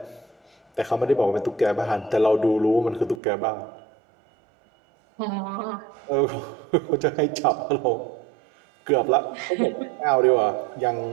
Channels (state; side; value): drops out; left; at 3.2 s